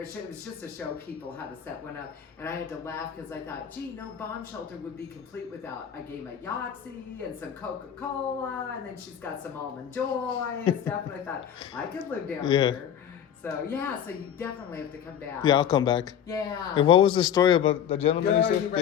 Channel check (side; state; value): right; quieter; 9.1 dB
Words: It was just to show people how to set one up. And I had to laugh because I thought, gee, no bomb shelter would be complete without a game of Yahtzee and some Coca-Cola, and then she's got some Almond Joy and stuff. And I thought, I could live down here. So yeah, so you definitely have to come back. Yeah, I'll come back. Yeah. And what was the story about the gentleman you Are said? you